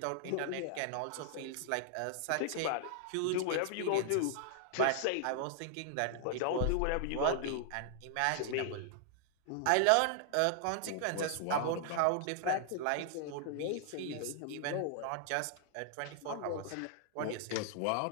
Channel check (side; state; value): both; different; correlation -0.01